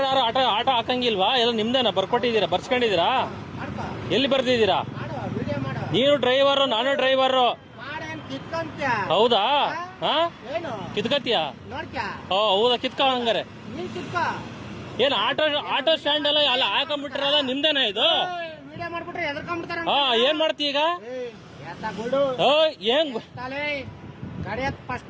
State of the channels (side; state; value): both; identical; correlation 1.00